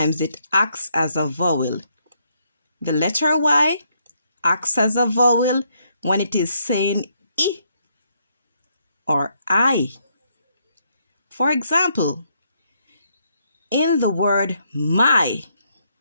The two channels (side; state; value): both; inverted; correlation -0.74